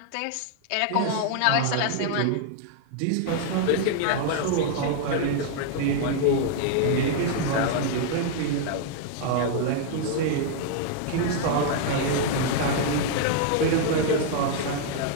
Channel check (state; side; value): different; both; correlation 0.00